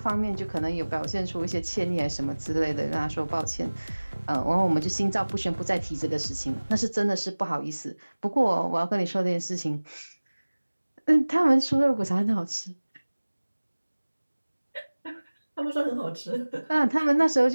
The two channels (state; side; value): inverted; both; correlation -1.00